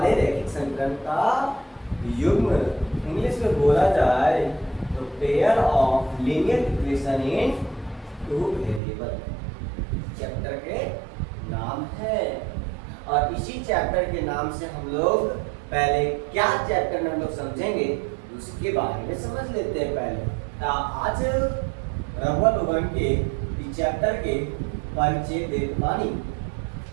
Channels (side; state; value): left; drops out; at 8.8 s